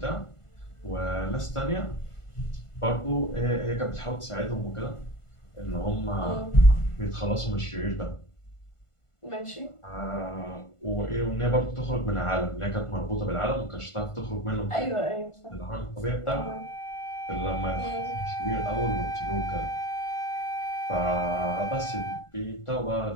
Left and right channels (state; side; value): late; right; 1.5 ms